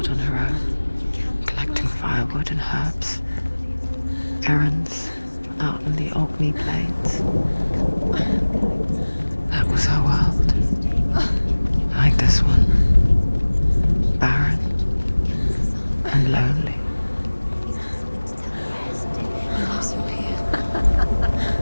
on her own, collecting firewood and herbs. Errands out in the Orkney Plains. That was her world. Like this one. Barren and lonely.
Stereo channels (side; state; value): both; inverted; correlation -1.00